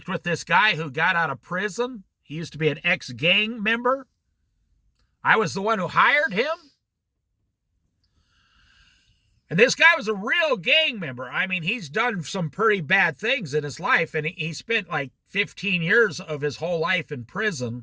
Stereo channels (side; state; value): both; identical; correlation 1.00